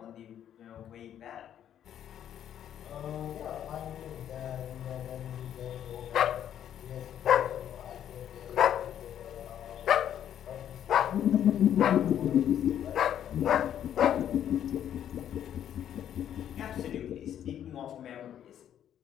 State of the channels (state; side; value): quieter; right; 10.2 dB